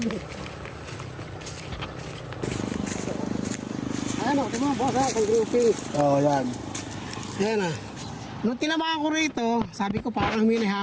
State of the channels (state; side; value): identical; both; correlation 1.00